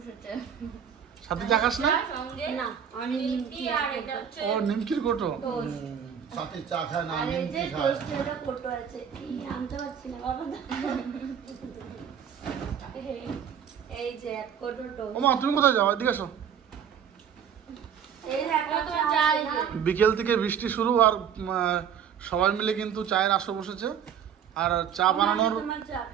সাথে চা খাস না? না, আমি নিমকি আর এটা হচ্ছে ও নিমকির কোটো। সাথে চা খায় না, আর এই যে নিমকি খায়। টোস্টের কোটো আছে। আনতে পারছি না বাবা। এই যে এক কোটো টোস্ট। ওমা তুমি কোথায় যাও? এদিকে এসো। এই দেখো তোমার চা। বিকেল থেকে বৃষ্টি শুরু আর সবাই মিলে কিন্তু চায়ের আসর বসেছে। আর চা বানানোর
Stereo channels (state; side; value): quieter; left; 8.3 dB